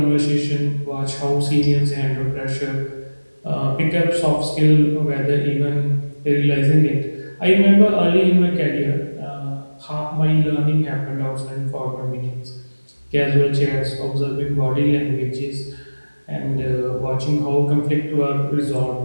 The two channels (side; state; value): both; inverted; correlation -1.00